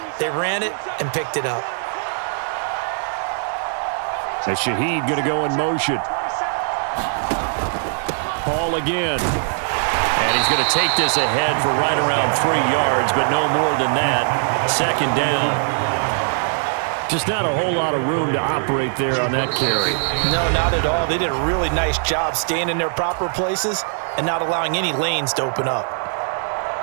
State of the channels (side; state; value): left; silent; digital silence